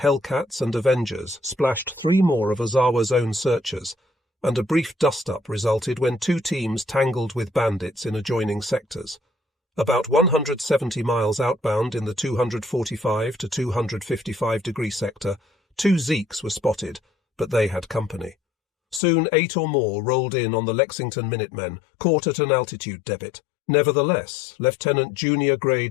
and Avengers splashed 3 more of Ozawa's own searchers, and a brief dust-up resulted when 2 teams tangled with bandits in adjoining sectors. About 170 miles outbound in the 245 to 255 degree sector, 2 Zeeks were spotted, but they had company. Soon 8 or more rolled in on the Lexington Minutemen, caught at an altitude debit. Nevertheless, Lieutenant Junior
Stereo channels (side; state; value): right; drops out; at 19.0 s